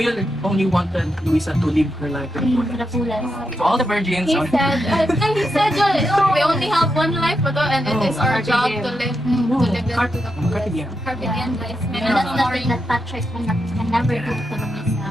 only wanted Luisa to live her life to the to the fullest. fullest. To all the virgins. He said, we only have one life, and it is our job to live it to the fullest. Carpe diem. Carpe diem, guys. And that's nothing that Patrick can never do to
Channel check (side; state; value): both; normal; correlation 0.85